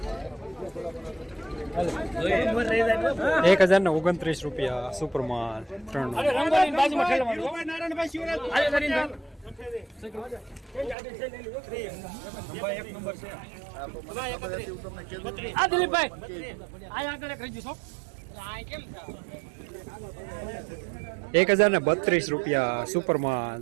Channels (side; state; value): left; drops out; at 11.0 s